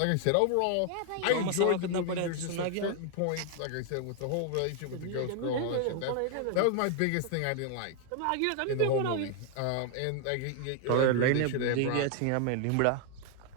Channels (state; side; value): different; both; correlation 0.00